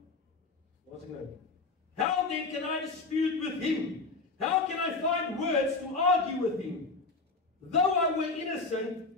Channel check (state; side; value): quieter; right; 3.8 dB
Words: then can I dispute with him? How can I find words to argue with him? Though I were